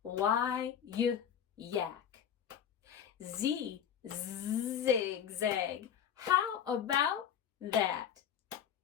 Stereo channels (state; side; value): quieter; right; 8.8 dB